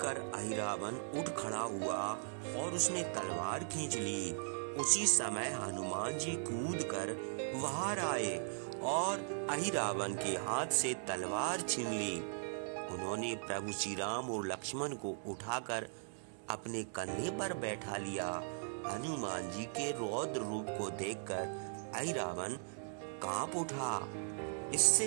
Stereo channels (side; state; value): left; silent; digital silence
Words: कर अहिरावण उठ खड़ा हुआ और उसने तलवार खींच ली। उसी समय हनुमान जी कूद कर बाहर आए और अहिरावण के हाथ से तलवार छीन ली। उन्होंने प्रभु श्री राम और लक्ष्मण को उठाकर अपने कंधे पर बैठा लिया। हनुमान जी के रौद्र रूप को देखकर अहिरावण कांप उठा।